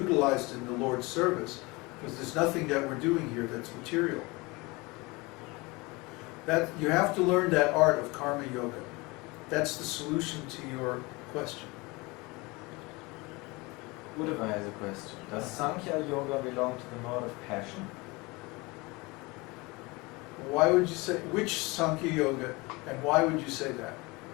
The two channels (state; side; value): quieter; right; 24.7 dB